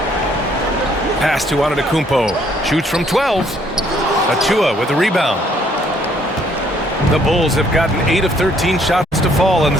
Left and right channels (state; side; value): normal; both; correlation 0.65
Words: Pass to Antetokounmpo. Shoots from 12. Achua with the rebound. The Bulls have gotten 8 of 13 shots to fall in